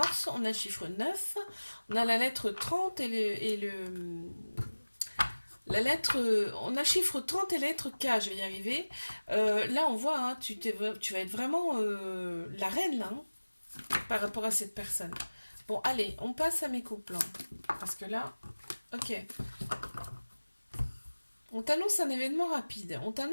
On a le chiffre 9, on a la lettre 30 la lettre, on a chiffre 30 et la lettre K, je vais y arriver. Là, on voit, hein, tu vas être vraiment la reine, là, hein, par rapport à cette personne. Bon, allez, on passe à mes couples. Hein, parce que là, ok. On t'annonce un événement rapide. On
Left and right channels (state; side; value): inverted; both; correlation -1.00